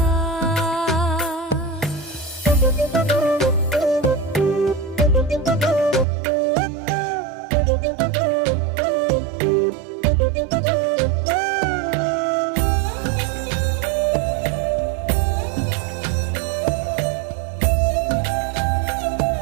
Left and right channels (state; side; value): drops out; left; at 6.1 s